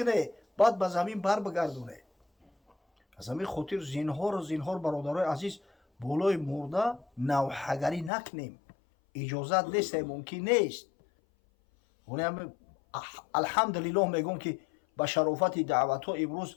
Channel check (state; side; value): drops out; right; at 8.1 s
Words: بعد به زمین بر بگردونه. از همین خاطر زینهار برادرای عزیز، بالای مرده نوحگری نکنیم. اجازت نیست، ممکن نیست. الحمدلله میگم که با شرافت دعوت ها امروز